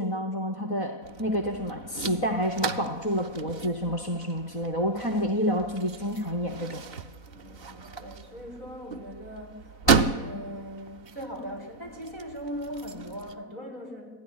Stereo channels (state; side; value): late; right; 3.9 ms